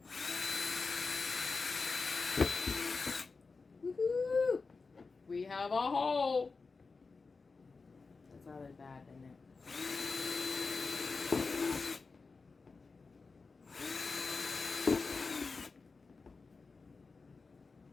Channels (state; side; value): quieter; right; 4.3 dB